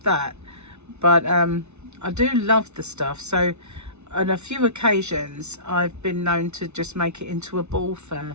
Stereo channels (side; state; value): left; late; 0.81 ms